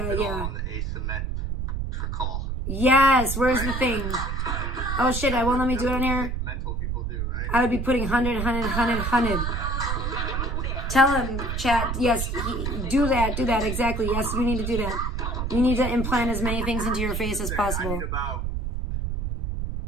asymmetrical. Yes, where's the thing? Oh shit, I won't let me do it on here. Mental people do, right? I would be putting 100. Tell him, chat, yes, do that, exactly. Yes, you need to do that. You need to implant as many things into your face as possible.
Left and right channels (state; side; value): noise; right; rumble, 2 dB below the sound